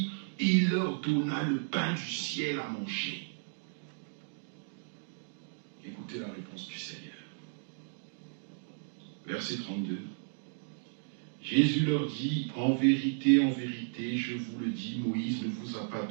il leur donna le pain du ciel à manger. Écoutez la réponse du Seigneur. Verset 32. Jésus leur dit, en vérité, je vous le dis, Moïse ne vous a pas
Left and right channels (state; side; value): silent; left; digital silence